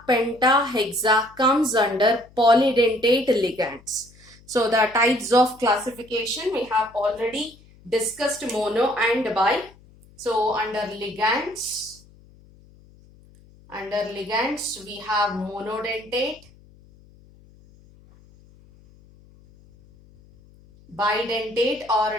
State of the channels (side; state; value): left; noise; hum, 26 dB below the sound